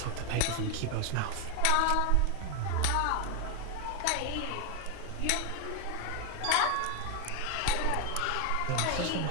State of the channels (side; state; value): both; different; correlation 0.01